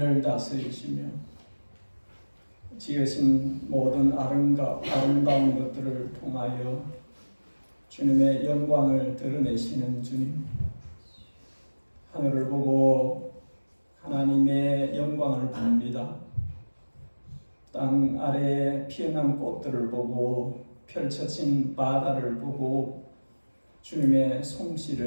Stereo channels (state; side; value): inverted; both; correlation -1.00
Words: 다스리시며 지으신 모든 아름다운 것들을 통하여 주님의 영광을 드러내시는 주님, 하늘을 보고 하나님의 영광을 봅니다. 땅 아래에 피어난 꽃들을 보고 펼쳐진 바다를 보고 주님의